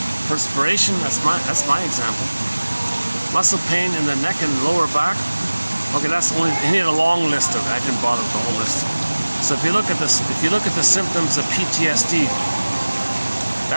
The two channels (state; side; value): inverted; both; correlation -1.00